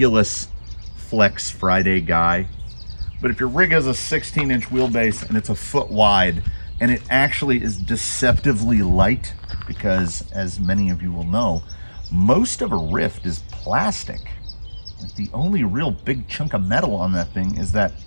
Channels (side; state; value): both; inverted; correlation -1.00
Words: Flex Friday guy. But if your rig has a 16-inch wheelbase and it's a foot wide, and it actually is deceptively light, because as many of you will know, most of a Rift is plastic. The only real big chunk of metal on that thing is that